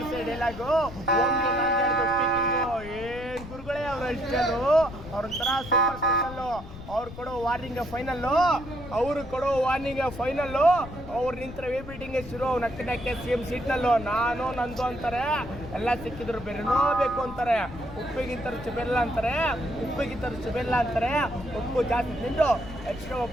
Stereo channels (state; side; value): noise; left; rumble, 13 dB below the sound